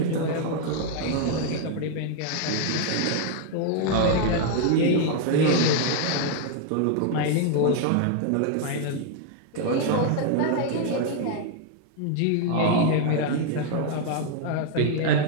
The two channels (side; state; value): both; different; correlation 0.00